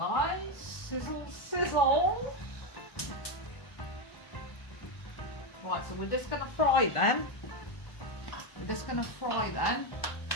Sizzle, sizzle. Right, so we're just going to fry them. We're just going to fry them.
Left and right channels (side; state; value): right; late; 1.5 ms